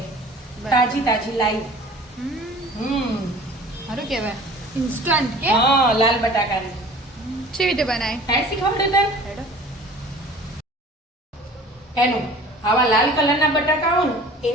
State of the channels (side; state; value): both; normal; correlation 0.46